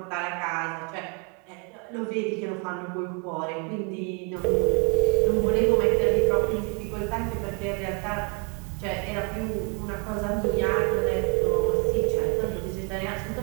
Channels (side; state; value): left; quieter; 34.8 dB